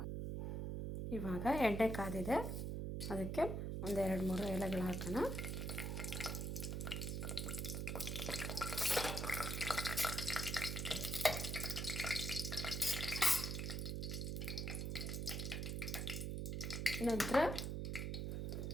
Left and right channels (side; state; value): right; noise; hum, 2 dB below the sound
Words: ಇವಾಗ ಎಣ್ಣೆ ಕಾದಿದೆ, ಅದಕ್ಕೆ ಒಂದು 2-3 ಎಲೆಗಳು ಹಾಕೋಣ. ನಂತರ